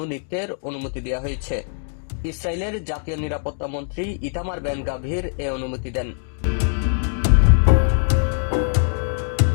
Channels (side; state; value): right; silent; digital silence